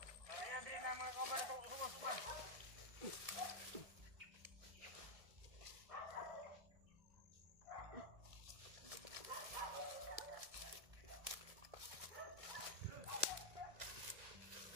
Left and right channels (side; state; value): left; late; 1.7 ms